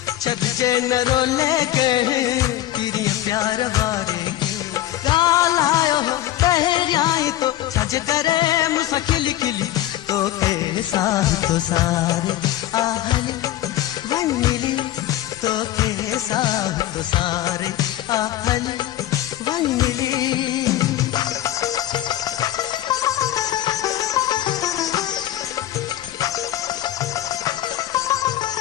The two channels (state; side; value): quieter; right; 13.6 dB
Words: छदजे न रोले के तेरी प्यार वारे गालायो तहरियाई तो छज करे मुसा खिली खिली तो के साथ तो सारे आहली वंगली तो के साथ तो सारे आहली वंगली